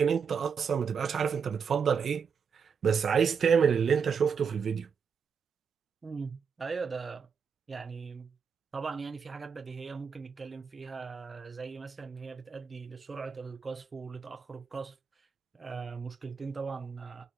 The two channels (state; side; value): quieter; left; 6.4 dB